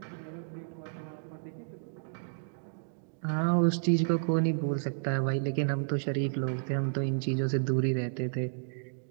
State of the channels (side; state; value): left; silent; digital silence